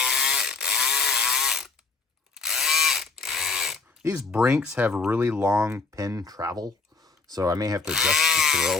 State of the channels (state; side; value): quieter; right; 4.1 dB